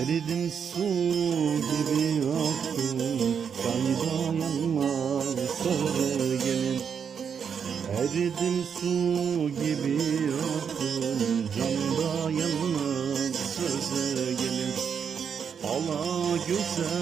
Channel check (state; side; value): quieter; left; 7.1 dB